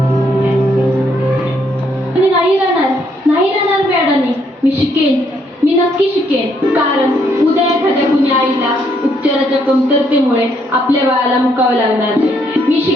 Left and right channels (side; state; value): both; normal; correlation 0.72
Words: नाही राहणार मॅडमनी. मी शिकेन, मी नक्की शिकेन. कारण उद्या एखाद्या कुणी आईला उपचाराच्या कमतरतेमुळे आपल्या बाळाला मुकावं लागणार नाही. मी